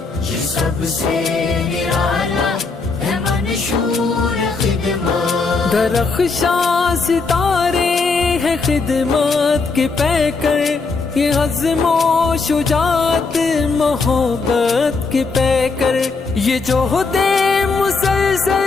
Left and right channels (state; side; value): quieter; right; 4.2 dB